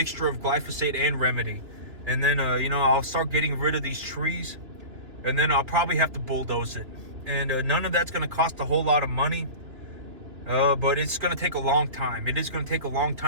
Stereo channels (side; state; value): left; late; 2.9 ms